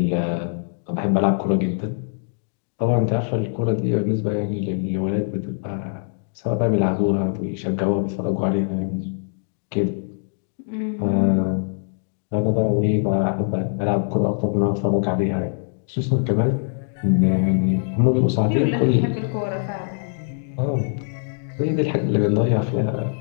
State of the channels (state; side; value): silent; right; digital silence